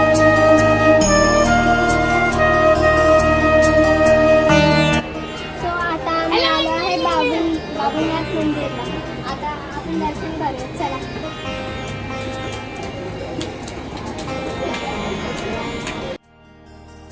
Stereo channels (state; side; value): identical; both; correlation 1.00